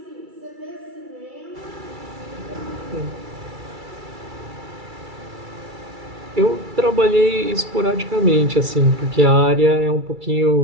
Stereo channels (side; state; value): left; late; 2.3 ms